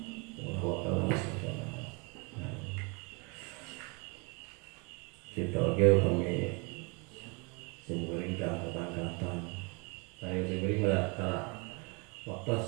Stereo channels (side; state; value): left; quieter; 31.0 dB